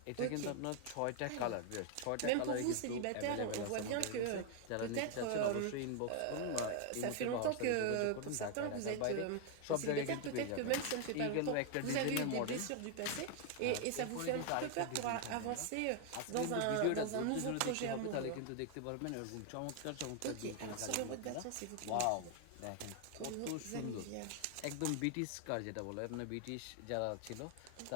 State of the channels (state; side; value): different; both; correlation 0.01